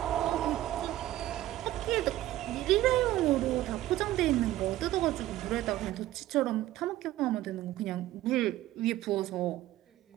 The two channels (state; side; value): quieter; left; 14.9 dB